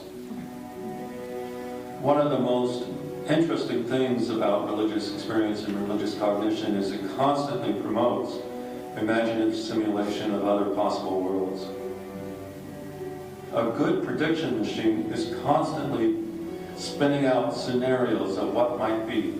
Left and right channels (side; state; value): both; identical; correlation 1.00